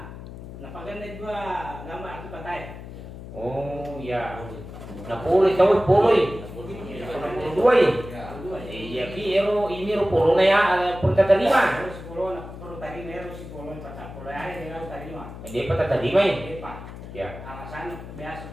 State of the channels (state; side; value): noise; left; hum, 13 dB below the sound